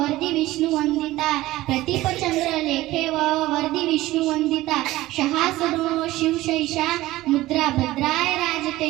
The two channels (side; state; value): left; quieter; 17.1 dB